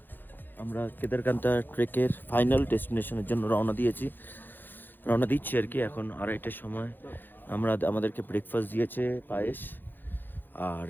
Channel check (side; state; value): right; late; 0.092 ms